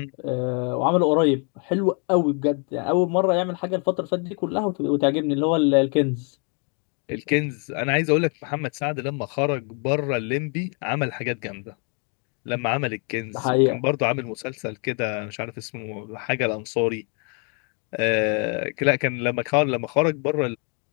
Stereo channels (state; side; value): quieter; right; 38.4 dB